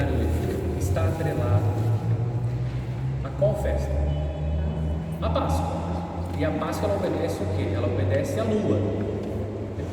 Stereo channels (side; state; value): both; identical; correlation 1.00